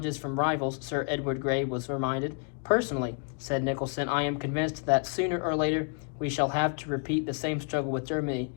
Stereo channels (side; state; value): right; quieter; 38.8 dB